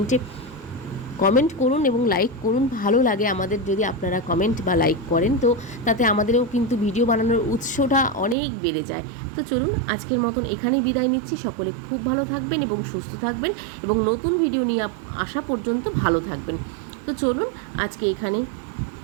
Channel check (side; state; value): left; drops out; at 8.3 s